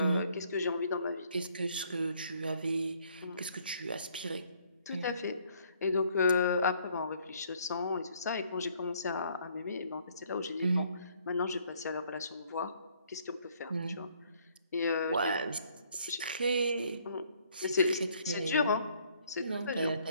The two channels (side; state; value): both; inverted; correlation -0.64